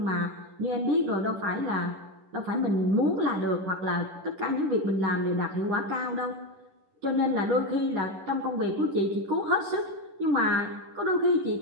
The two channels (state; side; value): late; left; 10 ms